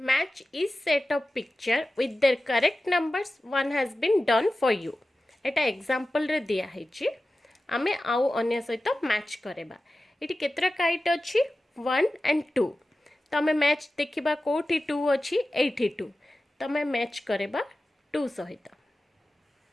match is set of picture with their correct numbers one has been done for you एटा एग्जांपल रे दिया हैची आमे आउ अन्य सहित मैच करेबा इटी केतरा काइट अछि 1 एंड 2 तो आमे मैच देखिबा कोठी 2 अछि 82 तो आमे मैच करेबा 2 सहित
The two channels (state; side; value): normal; both; correlation 0.95